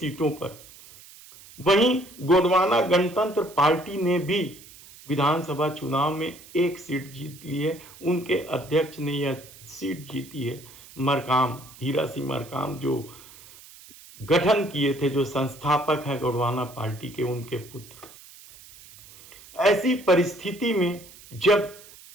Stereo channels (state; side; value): noise; right; hiss, 20 dB below the sound